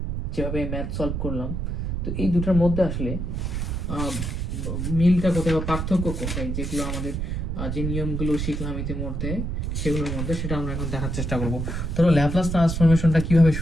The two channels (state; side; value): noise; right; rumble, 2 dB below the sound